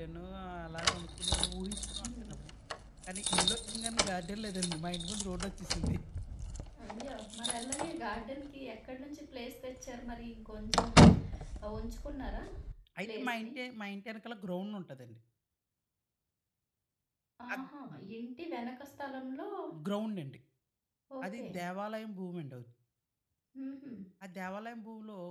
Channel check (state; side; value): identical; both; correlation 1.00